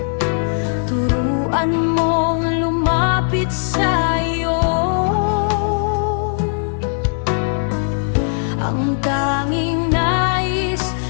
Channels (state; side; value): silent; right; digital silence